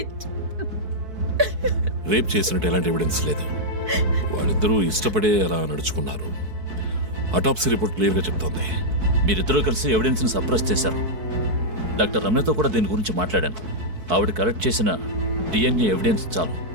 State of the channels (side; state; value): left; late; 4.6 ms